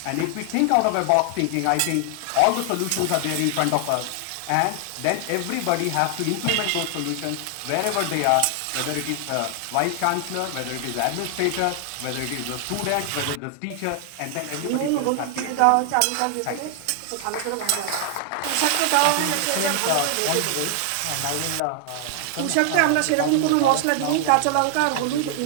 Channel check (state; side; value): different; both; correlation 0.00